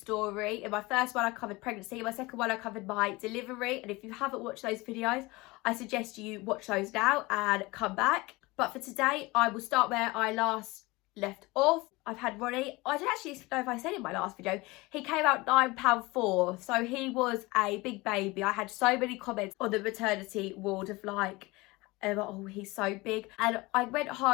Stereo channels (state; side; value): quieter; right; 22.6 dB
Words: In my first one I covered pregnancy, in my second one I covered my delivery, and if you haven't watched those videos I suggest you watch those now and come back. But for today I will start where I last left off. I've had Ronnie, I don't actually know if I said in my last video, he came out £9.4, so he was a big baby. I had so many comments on the maternity ward of like, oh, he's so big. And I went